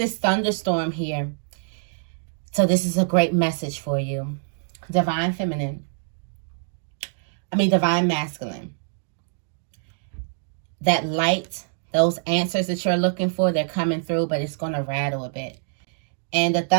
thunderstorm here, so this is a great message for you. Divine Feminine, Divine masculine. That light, those answers that you're looking for, they're coming through, but it's going to rattle a bit. And the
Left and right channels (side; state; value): left; silent; digital silence